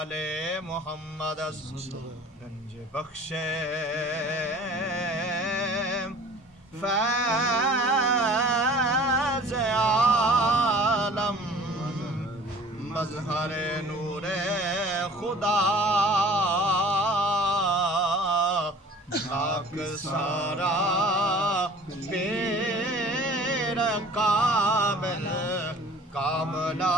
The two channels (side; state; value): both; normal; correlation 0.47